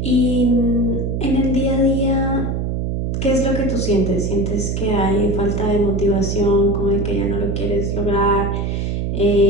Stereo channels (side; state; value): right; noise; hum, 1 dB below the sound